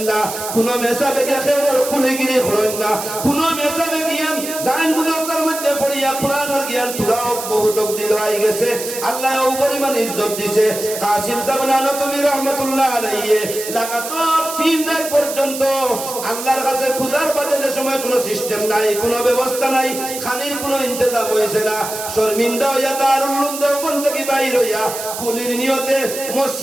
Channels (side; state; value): right; noise; hiss, 8 dB below the sound